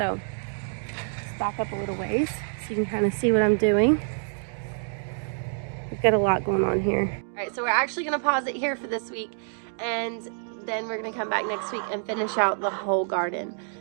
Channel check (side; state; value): left; silent; digital silence